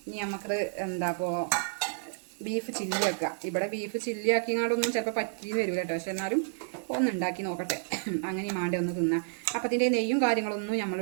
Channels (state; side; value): silent; left; 58 dB below the other